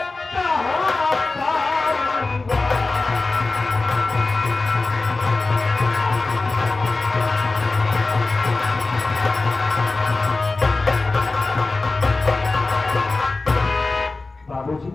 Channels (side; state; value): right; quieter; 3.5 dB